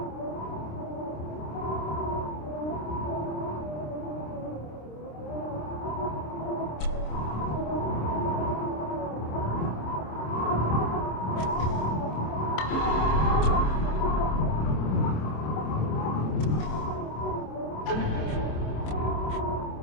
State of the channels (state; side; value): late; right; 26 ms